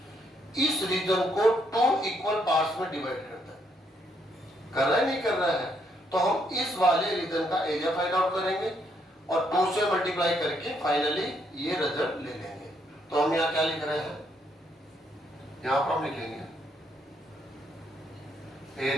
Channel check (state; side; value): normal; both; correlation 0.73